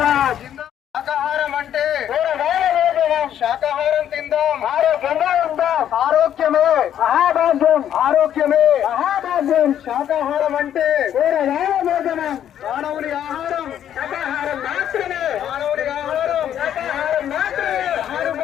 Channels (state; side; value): quieter; right; 10.3 dB